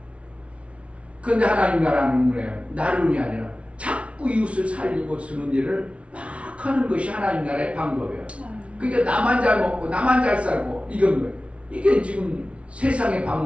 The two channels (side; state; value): left; late; 0.062 ms